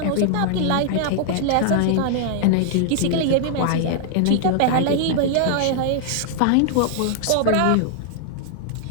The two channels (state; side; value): different; both; correlation -0.01